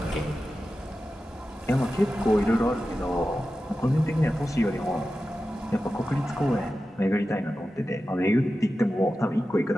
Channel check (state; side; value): normal; both; correlation 0.93